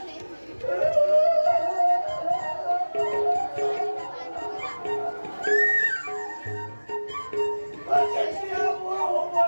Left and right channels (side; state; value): both; inverted; correlation -1.00